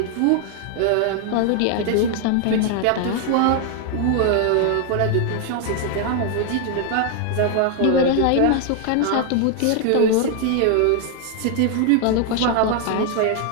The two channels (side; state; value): both; different; correlation 0.00